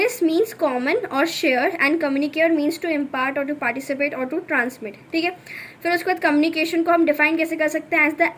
means common और share and communicare means to impart और टू पार्टिसिपेट और टू ट्रांसमिट, ठीक है। फिर उसके बाद कम्युनिकेशन को हम डिफाइन कैसे कर सकते हैं, एज द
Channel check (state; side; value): identical; both; correlation 1.00